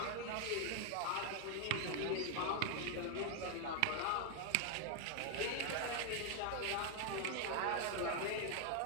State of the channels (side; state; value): both; different; correlation 0.00